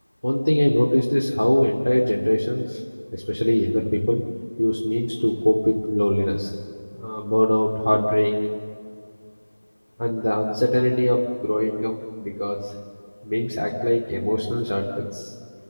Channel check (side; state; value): both; inverted; correlation -1.00